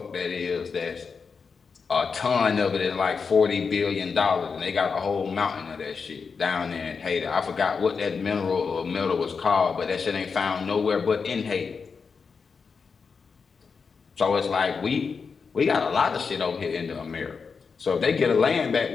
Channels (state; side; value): quieter; right; 5.4 dB